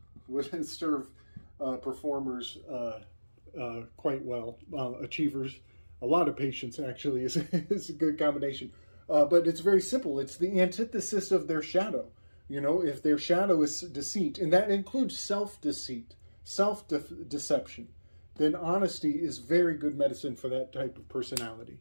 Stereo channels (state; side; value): inverted; both; correlation -1.00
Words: would serve performers quite well. Achievers, a lot of patience actually is a good combination. But it's very simple. It's the antithesis of their shadow. You know, if their shadow is deceit, and that includes self-deceit, self-deception, then honesty is very good medicine for that type of personality.